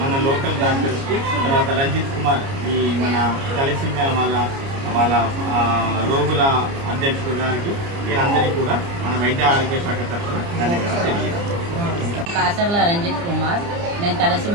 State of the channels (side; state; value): left; late; 29 ms